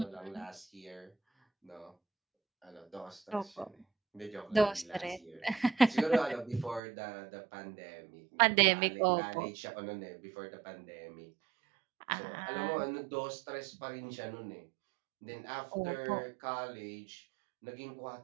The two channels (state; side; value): drops out; left; at 6.8 s